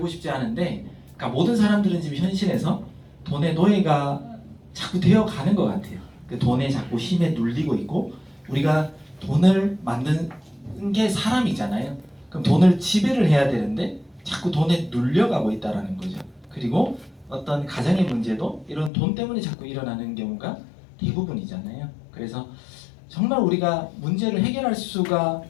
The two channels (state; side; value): drops out; right; at 18.9 s